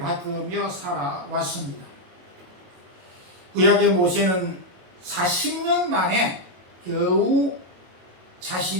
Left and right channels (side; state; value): left; late; 22 ms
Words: 살아왔습니다. 구약의 모세는 40년 만에 겨우